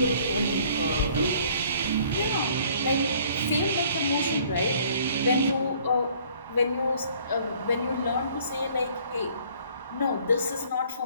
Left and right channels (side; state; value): both; inverted; correlation -0.57